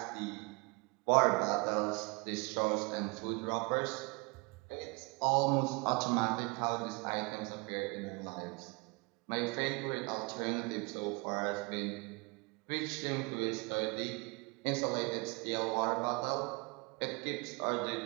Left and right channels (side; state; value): left; quieter; 28.7 dB